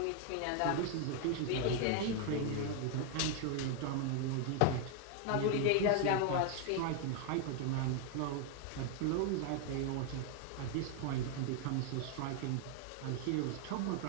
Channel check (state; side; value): different; both; correlation 0.01